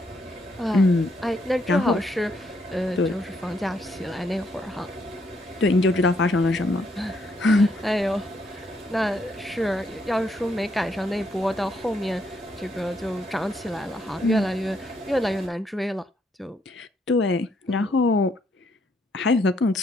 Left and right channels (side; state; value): both; normal; correlation 0.73